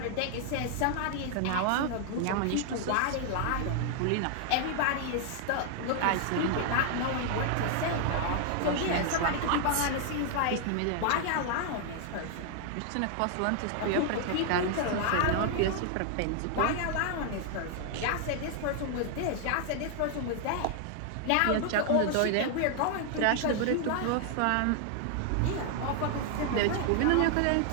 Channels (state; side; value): different; both; correlation 0.00